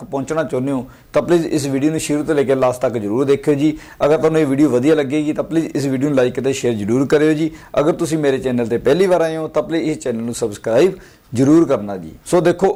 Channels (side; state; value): both; identical; correlation 1.00